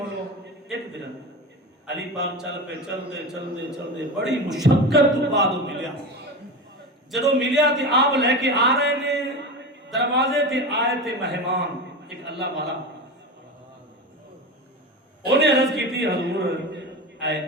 ایک درہم. علی پاک چل پہ چلتے بڑی مشقت تو بعد ملیا. جدو ملیا تے آپ لے کے آ رہے نے, دروازے تے آئے تے مہمان ایک اللہ والا. انہیں عرض کی تھی حضور اے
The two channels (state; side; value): normal; both; correlation 0.25